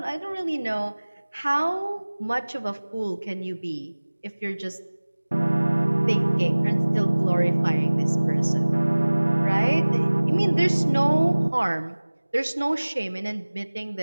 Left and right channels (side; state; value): both; inverted; correlation -1.00